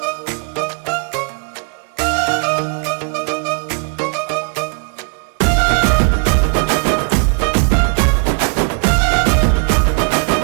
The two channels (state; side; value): quieter; left; 38.7 dB